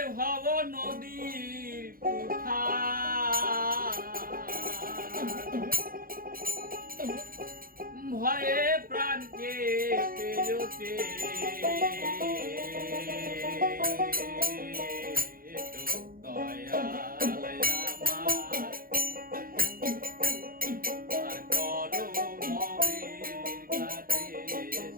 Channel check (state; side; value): late; left; 0.42 ms